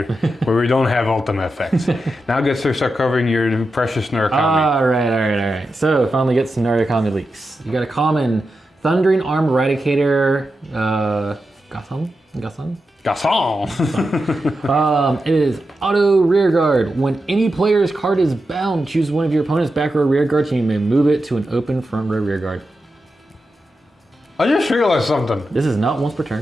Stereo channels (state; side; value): normal; both; correlation 0.89